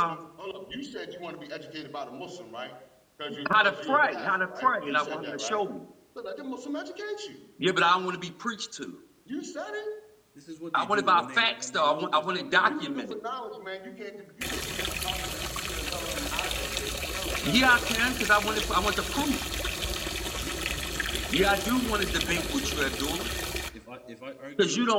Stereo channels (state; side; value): identical; both; correlation 1.00